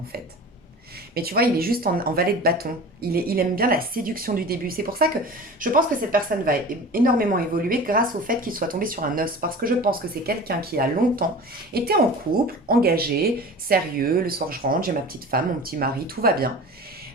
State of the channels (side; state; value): both; normal; correlation 0.37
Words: fait. Mais tu vois, il est juste en valet de bâton. Il aime bien la séduction du début. C'est pour ça que je pense que cette personne va énormément évoluer grâce au fait qu'il soit tombé sur un os. Parce que je pense que c'est quelqu'un qui a longtemps été en couple, engagé, sérieux. Le soir, je rentre, j'ai ma petite femme, mon petit mari, tout va bien.